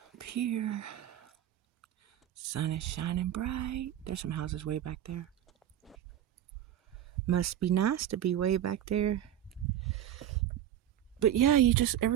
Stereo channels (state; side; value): quieter; left; 11.1 dB